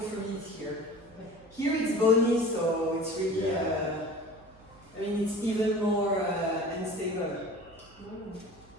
me is here. Here it's bony, so it's really. Yeah. I mean, it's even more unstable.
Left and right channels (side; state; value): right; noise; hum, 26 dB below the sound